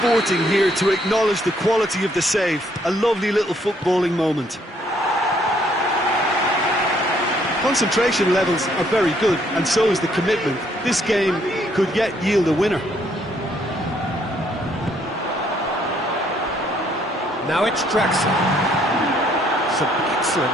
here to acknowledge the quality of the save. A lovely little footballing moment. Concentration levels are very good, and so is the commitment. This game could yet yield a winner. Now it's Draxler. Some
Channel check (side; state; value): both; normal; correlation 0.68